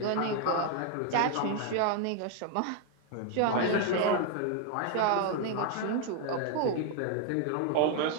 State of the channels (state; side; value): different; both; correlation 0.01